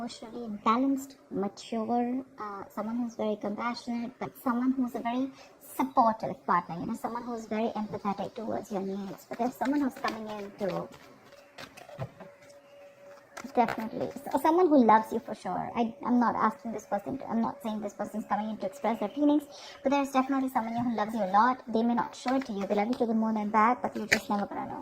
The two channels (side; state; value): both; identical; correlation 1.00